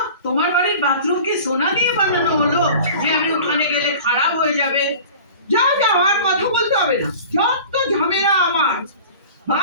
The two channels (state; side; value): inverted; both; correlation -0.41